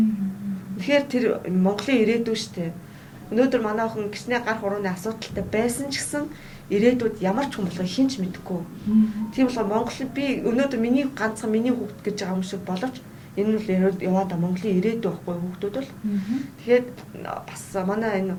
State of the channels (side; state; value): both; identical; correlation 1.00